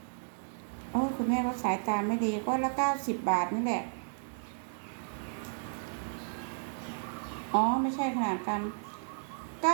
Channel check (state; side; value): silent; left; digital silence